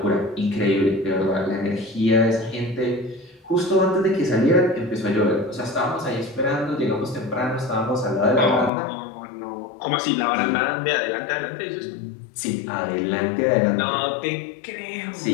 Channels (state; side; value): drops out; right; at 8.7 s